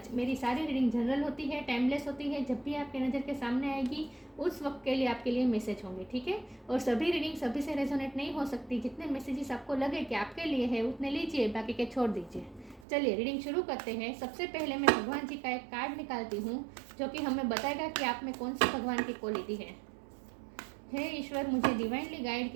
मेरी सारी रीडिंग जनरल होती है, टाइमलेस होती है। जब भी आपके नज़र के सामने आएगी उस वक्त के लिए आपके लिए मैसेज होंगे, ठीक है। और सभी रीडिंग सभी से रेजोनेट नहीं हो सकती। जितने मैसेजेस आपको लगे कि आपके लिए है उतने लीजिए, बाकी के छोड़ दीजिए। चलिए रीडिंग शुरू करते हैं। सबसे पहले मैं भगवान जी का एक कार्ड निकालती हूँ जो कि हमें बताएगा कि आप में कौन सी भगवान की क्वालिटी है। हे ईश्वर, मुझे डिवाइनली गाइड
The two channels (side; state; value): left; drops out; at 12.8 s